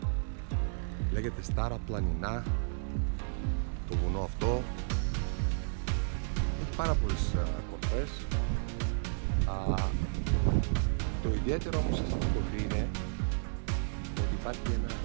Λέγεται Στάρα Πλανινά το βουνό αυτό. Έχει πάρα πολλές κορφές. Το ιδιαίτερο όμως σε αυτή την κορφή είναι ότι υπάρχει ένα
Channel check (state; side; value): silent; left; 56 dB below the other